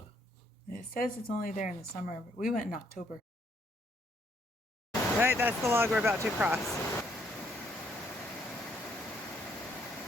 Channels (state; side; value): normal; both; correlation 0.69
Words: It says it's only there in the summer, but we went in October. Right, that's the log we're about to cross.